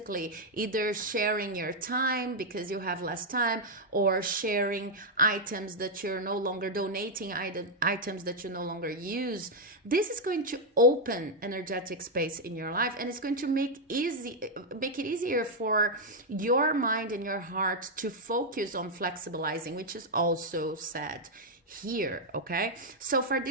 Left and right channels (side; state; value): both; normal; correlation 0.00